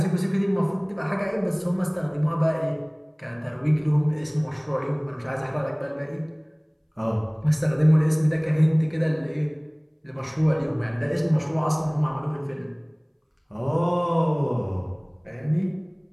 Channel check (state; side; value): identical; both; correlation 1.00